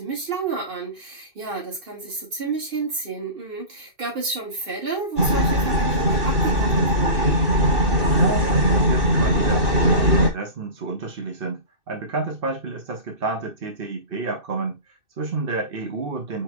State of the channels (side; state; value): left; late; 2.6 ms